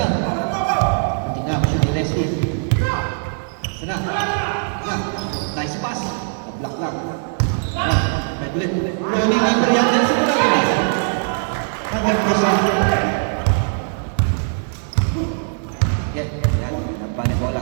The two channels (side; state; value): left; silent; digital silence